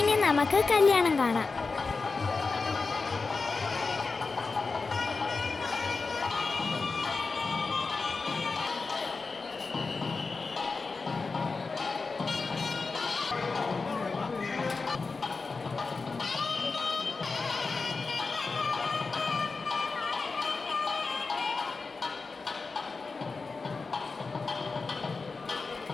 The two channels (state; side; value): quieter; right; 4.2 dB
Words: നമുക്ക് കല്യാണം കാണാം.